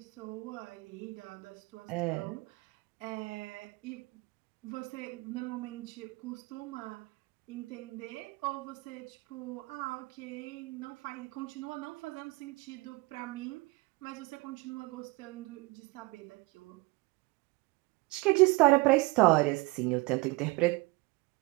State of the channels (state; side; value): quieter; left; 24.0 dB